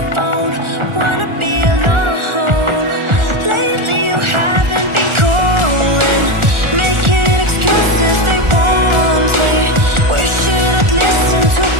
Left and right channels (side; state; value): left; late; 1.4 ms